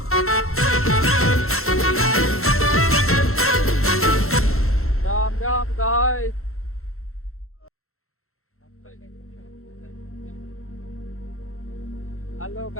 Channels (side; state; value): right; late; 0.62 ms